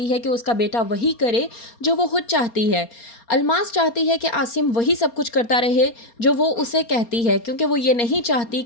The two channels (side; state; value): right; late; 4.3 ms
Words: है कि उसका बेटा वही करे जो वो खुद चाहती है। अलमास चाहती है कि आसिम वही सब कुछ करता रहे जो वो उसे कहती है, क्योंकि वो ये नहीं चाहती